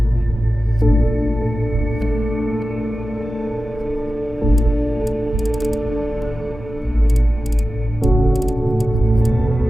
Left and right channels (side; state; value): both; normal; correlation 0.94